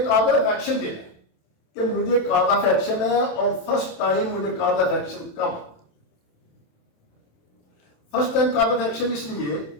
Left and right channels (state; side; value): late; right; 27 ms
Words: कॉज ऑफ एक्शन देना है कि मुझे कॉज ऑफ एक्शन है और फर्स्ट टाइम मुझे कॉज ऑफ एक्शन कब। First time cause of action इसलिए